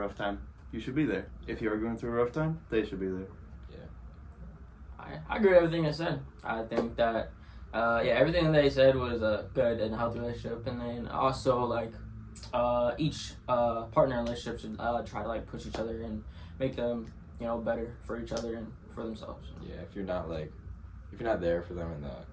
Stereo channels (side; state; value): both; identical; correlation 1.00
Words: time, you should be there. If you're going through a rough time, they should be there. I agree with everything they said. I think that, everything they said was a good and healthy relationship. And then also, like, each partner in a relationship should try to, like, push each other and make them, better for each other and for themselves. Yeah, if you're not there for them in the,